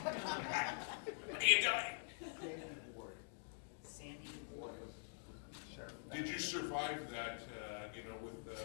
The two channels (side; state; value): right; silent; digital silence